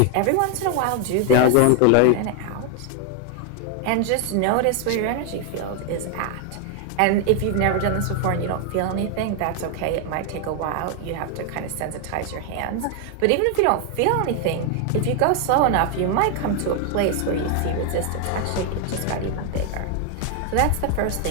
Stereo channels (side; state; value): both; different; correlation 0.00